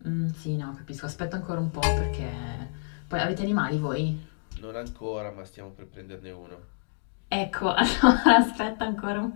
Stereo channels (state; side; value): silent; right; digital silence